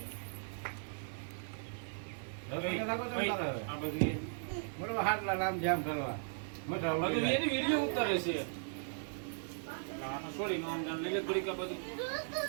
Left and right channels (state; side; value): silent; left; digital silence